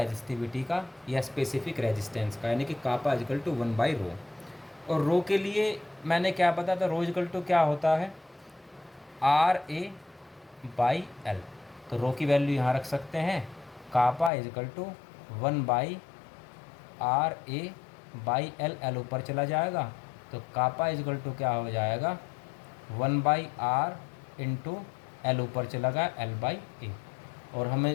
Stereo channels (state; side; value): drops out; right; at 14.3 s